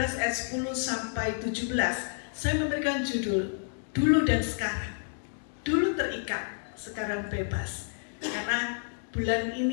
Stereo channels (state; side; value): silent; right; digital silence